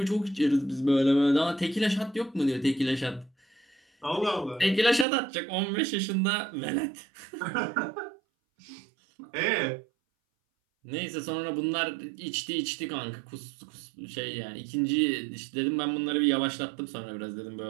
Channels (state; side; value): drops out; left; at 5.1 s